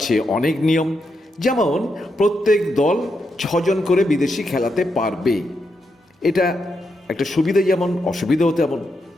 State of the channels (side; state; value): both; normal; correlation 0.83